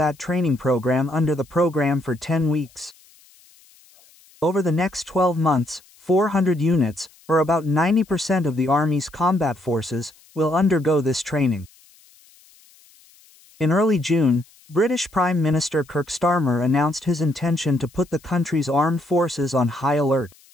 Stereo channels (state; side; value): noise; left; hiss, 28 dB below the sound